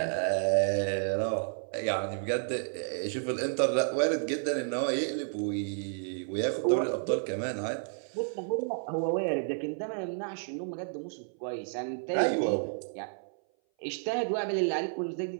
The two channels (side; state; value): left; silent; 57 dB below the other